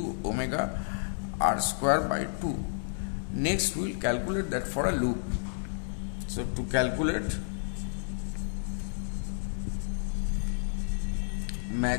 omega r square by 2. Next we will calculate that for a loop. So to calculate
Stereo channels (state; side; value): silent; right; digital silence